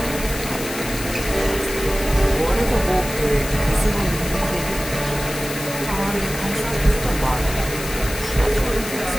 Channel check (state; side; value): noise; left; hiss, 9 dB below the sound